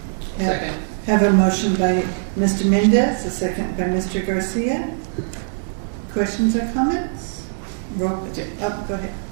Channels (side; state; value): left; silent; 65 dB below the other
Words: Second. Have a motion by Mr. Mendez, a second by Mr. Garcia. Questions or comments? Go ahead.